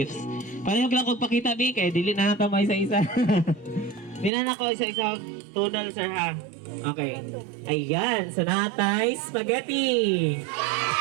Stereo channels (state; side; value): drops out; left; at 4.3 s